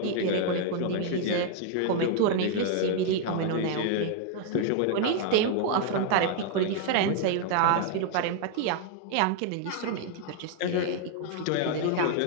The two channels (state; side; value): different; both; correlation 0.00